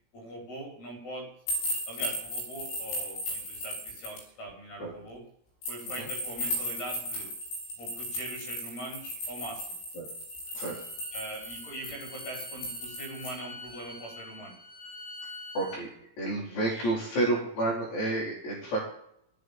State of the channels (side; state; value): right; late; 17 ms